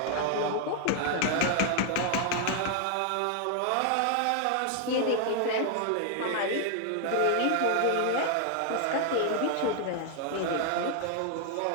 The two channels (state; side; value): different; both; correlation 0.00